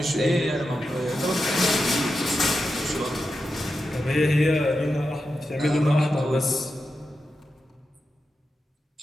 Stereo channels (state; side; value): normal; both; correlation 0.89